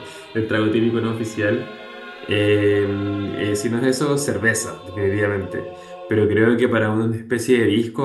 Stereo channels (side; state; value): both; identical; correlation 1.00